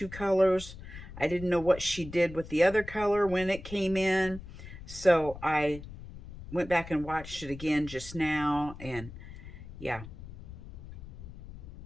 colors. I didn't know what she did with the other color when it came in. So I went back and watched it again just now, and yeah.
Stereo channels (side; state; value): left; noise; rumble, 14 dB below the sound